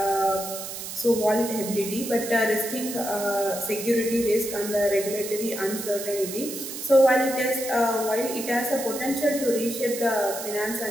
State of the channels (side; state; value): right; noise; hiss, 8 dB below the sound